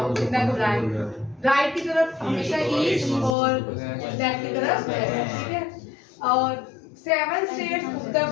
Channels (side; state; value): right; drops out; at 3.4 s